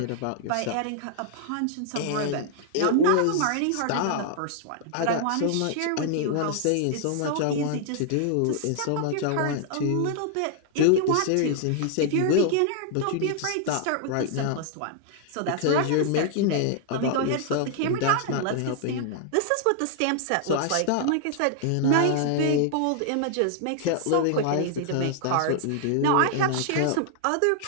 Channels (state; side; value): different; both; correlation 0.00